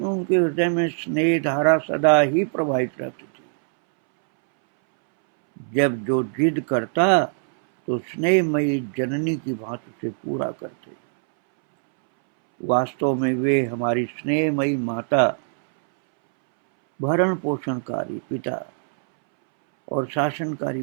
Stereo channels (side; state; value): left; silent; 64 dB below the other